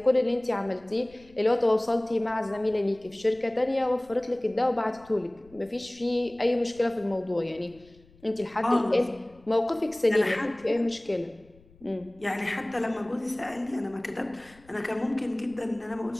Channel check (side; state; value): left; noise; rumble, 27 dB below the sound